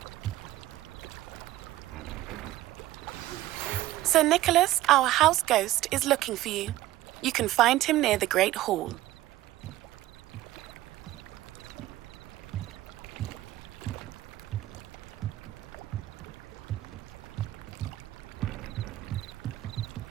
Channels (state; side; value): quieter; left; 15.6 dB